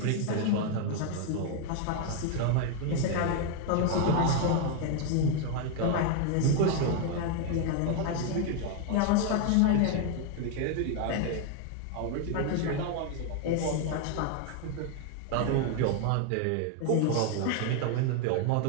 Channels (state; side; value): different; both; correlation 0.01